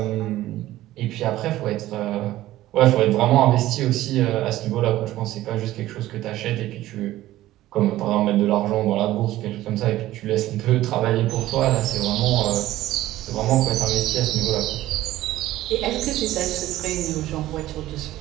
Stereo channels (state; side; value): quieter; left; 15.3 dB